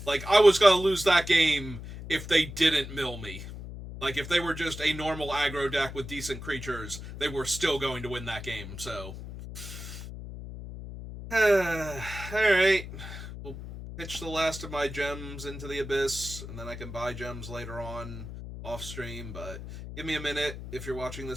Like, I was gonna lose that game if they didn't mill me. Like, if they were just a normal aggro deck with decent creatures, they were still going to win that game, so... Alright. We'll pitch the last of my gems into the abyss, and then I can buy gems later on off-stream, but give me a minute if you're watching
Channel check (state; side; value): noise; left; hum, 10 dB below the sound